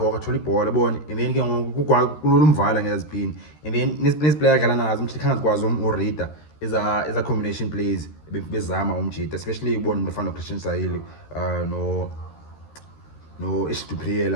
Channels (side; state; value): right; late; 13 ms